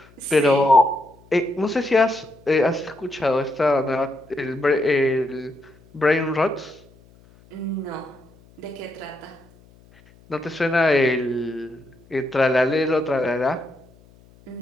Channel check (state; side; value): noise; left; hum, 28 dB below the sound